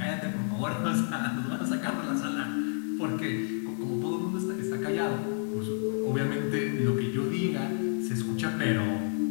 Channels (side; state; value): right; silent; 58 dB below the other